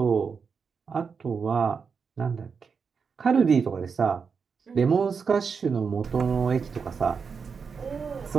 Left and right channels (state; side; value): quieter; left; 5.7 dB